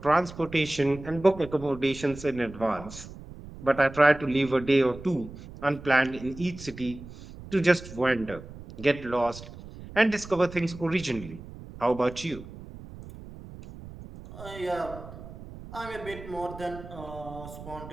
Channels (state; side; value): noise; right; rumble, 15 dB below the sound